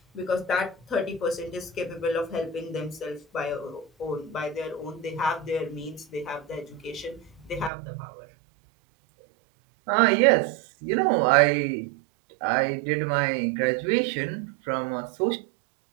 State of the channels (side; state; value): left; drops out; at 7.7 s